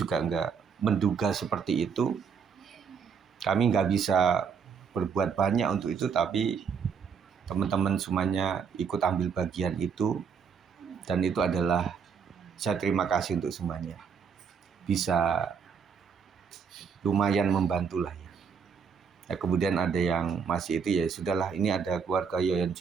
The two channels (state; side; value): quieter; left; 6.4 dB